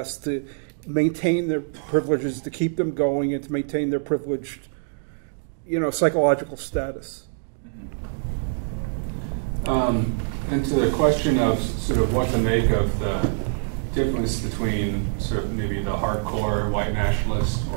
to maintain their privileges, to keep them going, and to maintain their privileged, psychological status. And to the question of sort of what to make of the difference between sort of maybe the hardcore white nationalist,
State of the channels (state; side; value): silent; left; digital silence